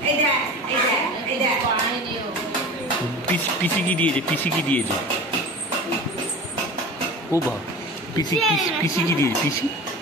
পিসি কি দিয়েছে? পিসি কি দিয়েছে? ও বাবা, পিসি পিসি কি দিয়েছে? পিসি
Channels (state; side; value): normal; both; correlation 0.35